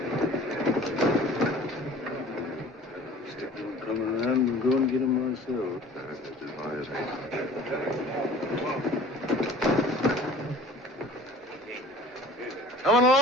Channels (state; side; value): normal; both; correlation 0.46